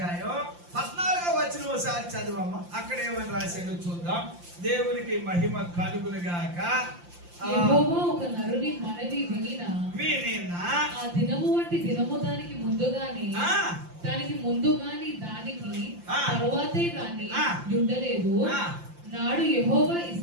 14వ వచనం ఒకసారి చదవమ్మ. అక్కడ ఏమని రాశాడో చూద్దాం. దేవునికి మహిమ కలుగునుగాక. యెహోవా ఒక నరుని మనవి వినినా ఆ దినము వంటి దినము దానికి ముందుగాని దానికి తరువాతే గాని ఉండలేదు. నాడు యెహోవా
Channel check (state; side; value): late; left; 5.8 ms